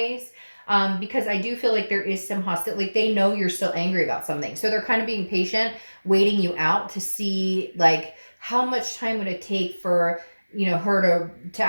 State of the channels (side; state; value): both; inverted; correlation -1.00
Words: Because I do feel like there is some hostility. Like, they know you're still angry about something. So they're kind of being patient, waiting you out to see like how much time would it take for, her to